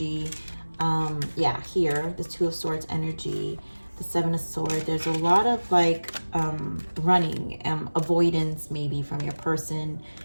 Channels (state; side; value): inverted; both; correlation -1.00